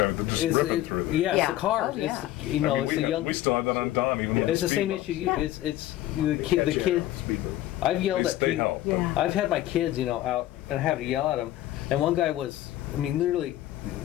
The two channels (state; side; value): quieter; right; 14.5 dB